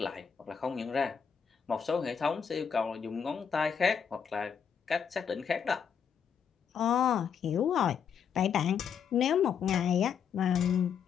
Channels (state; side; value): quieter; right; 7.3 dB